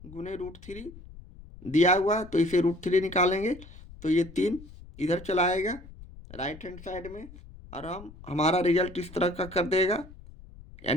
गुने √3 दिया हुआ है, तो इसे √3 निकालेंगे तो ये 3 इधर चला आएगा राइट हैंड साइड में, और हमारा रिजल्ट इस तरह का कर देगा,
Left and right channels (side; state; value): left; noise; rumble, 18 dB below the sound